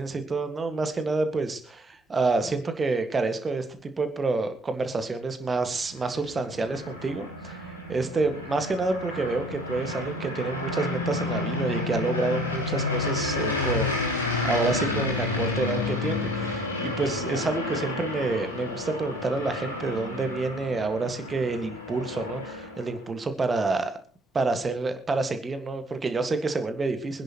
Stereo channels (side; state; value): both; normal; correlation 0.57